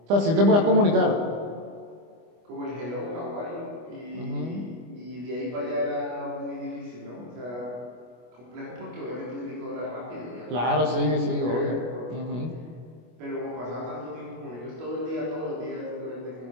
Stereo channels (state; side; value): late; left; 25 ms